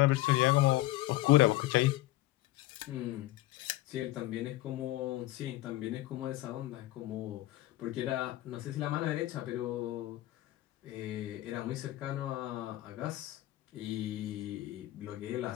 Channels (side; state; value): right; quieter; 16.5 dB